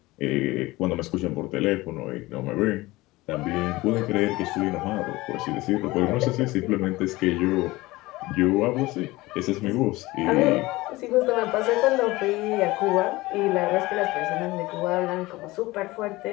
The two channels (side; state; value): right; quieter; 20.0 dB